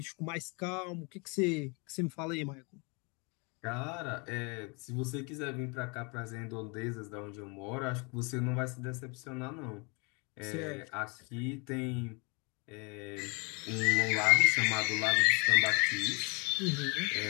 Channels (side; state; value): right; quieter; 31.3 dB